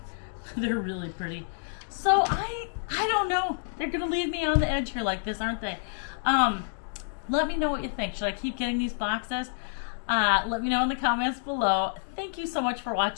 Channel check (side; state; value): right; silent; digital silence